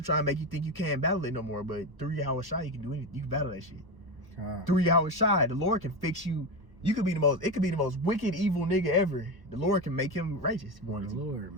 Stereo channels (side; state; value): left; late; 1.1 ms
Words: try and make you think you can't battle it no more. But through Yahweh Shai, you can do anything. You can battle that shit. Through Yahweh Shai, the Lord can fix you. It could be the most wicked, evil nigga ever. The Lord can make him righteous. The Lord,